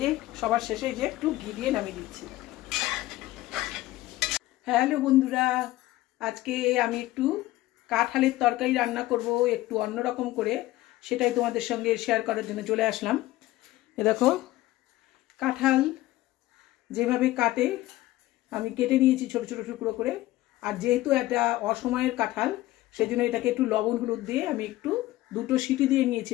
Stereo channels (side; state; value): right; quieter; 16.9 dB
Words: যে সবার শেষে যে একটু ঘি দিয়ে নামিয়ে দিচ্ছি। হ্যালো বন্ধুরা, আজকে আমি একটু কাঁঠালের তরকারি রান্না করব একটু অন্যরকম করে, সেটাই তোমাদের সঙ্গে শেয়ার করার জন্য চলে আসলাম। এ দেখো, কাঁঠাল যেভাবে কাটে আমি কেটে নিয়েছি ছোট ছোট টুকরো করে। আর যেহেতু এটা অসময়ের কাঁঠাল, সেই জন্য এটাকে একটু লবণ হলুদ দিয়ে আমি একটু 2টো সিটি দিয়ে নিয়েছি